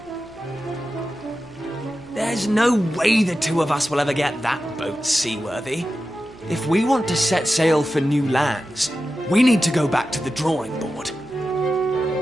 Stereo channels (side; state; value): right; noise; hum, 22 dB below the sound